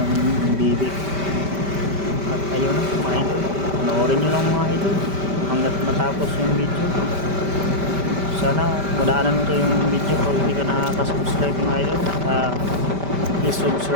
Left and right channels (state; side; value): late; left; 5.1 ms